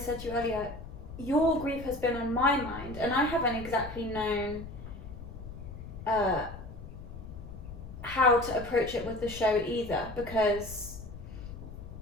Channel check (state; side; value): noise; left; rumble, 12 dB below the sound